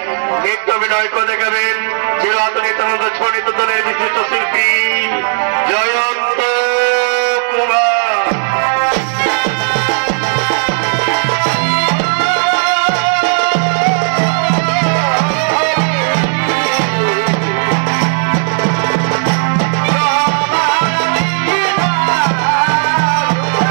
নৃত্য অভিনয় করে দেখাবেন চিরাচরিত নিত্যানন্দ ছড়িত দলের বিশিষ্ট শিল্পী জয়ন্ত কুমার।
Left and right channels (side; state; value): left; silent; digital silence